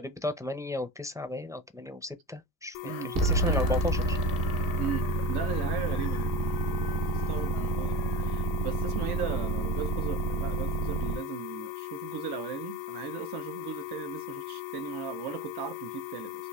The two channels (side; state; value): both; normal; correlation 0.26